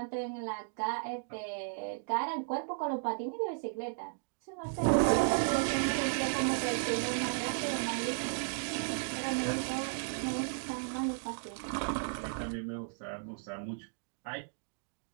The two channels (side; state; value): left; silent; digital silence